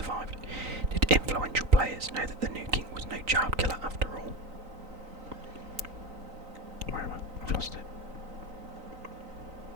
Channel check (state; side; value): late; left; 3.9 ms